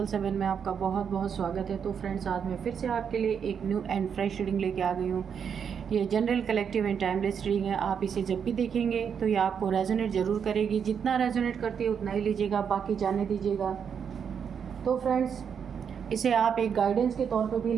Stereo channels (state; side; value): quieter; left; 7.3 dB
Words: में आपका बहुत बहुत स्वागत है। तो फ्रेंड्स, आज मैं फिर से आपके लिए एक न्यू एंड फ्रेश रीडिंग लेके आ गई हूँ। ये general, collective and timeless reading है। आप इसे जब भी देखेंगे तो ये आपको रेजोनेट ज़रूर करेगी। जितना रेजोनेट करती है उतना ही लीजिएगा, बाकी जाने दीजिएगा। तो फ्रेंड्स, इसे आप एक गाइडेंस के तौर पर भी